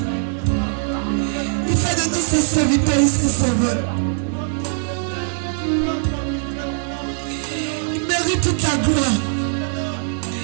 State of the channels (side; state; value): left; silent; 65 dB below the other